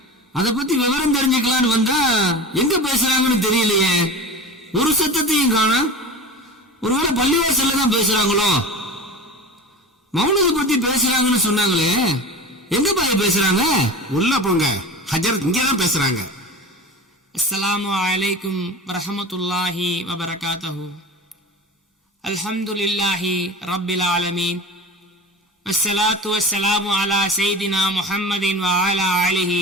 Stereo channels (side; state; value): both; normal; correlation 0.32